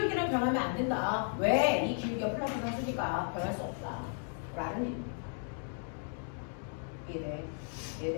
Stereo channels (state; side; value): silent; right; 55 dB below the other